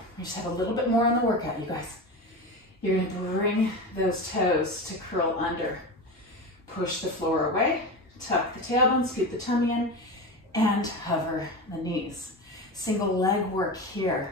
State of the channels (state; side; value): normal; both; correlation 0.24